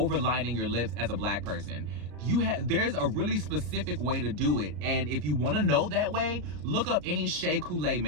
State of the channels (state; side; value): late; left; 33 ms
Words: your lips as a black person. There's a really specific way to do it, and if you want to know that way, look up any Shea Coulee